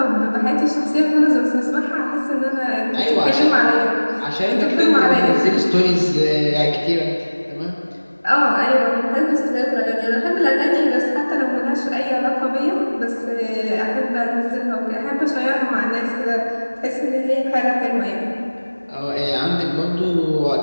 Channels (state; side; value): inverted; both; correlation -1.00